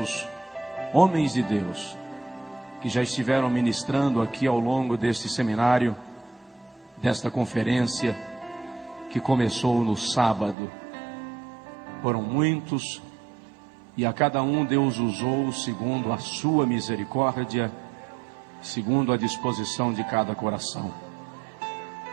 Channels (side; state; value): left; drops out; at 10.6 s